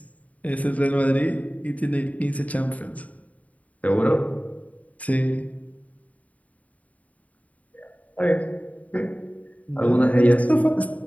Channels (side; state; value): right; late; 0.070 ms